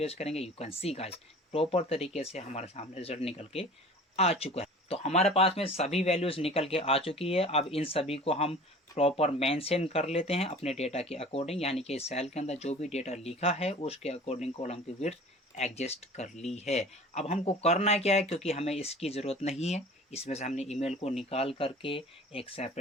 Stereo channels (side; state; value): both; normal; correlation 0.43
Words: करेंगे, you can see guys proper तरीके से हमारे सामने रिजल्ट निकल के आ चुका है। तो हमारे पास में सभी वैल्यूज निकल के आ चुकी है। अब इन सभी को हम प्रॉपर मेंशन कर लेते हैं अपने डेटा के अकॉर्डिंग, यानी कि सेल के अंदर जो भी डेटा लिखा है उसके अकॉर्डिंग कॉलम की विड्थ एडजस्ट कर ली है। अब हमको करना क्या है, क्योंकि हमें इसकी ज़रूरत नहीं है, इसमें से हमने ईमेल को निकाल करके एक